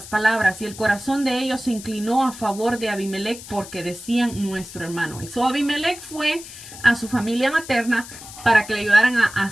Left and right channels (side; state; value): left; noise; hiss, 15 dB below the sound